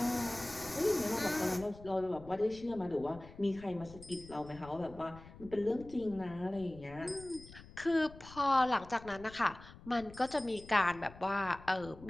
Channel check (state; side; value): noise; left; rumble, 18 dB below the sound